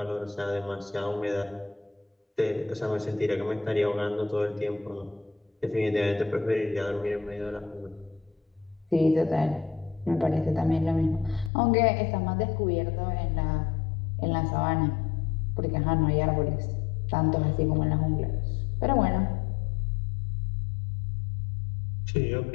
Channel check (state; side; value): drops out; right; at 11.5 s